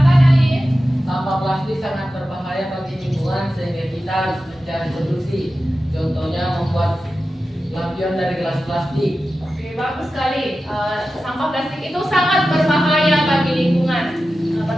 Alif. sampah plastik sangat berbahaya bagi lingkungan sehingga kita harus mencari solusi. Contohnya membuat lampion dari gelas plastik. Oke, bagus sekali. Sampah plastik itu sangat berbahaya bagi lingkungan.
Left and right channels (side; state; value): both; normal; correlation 0.93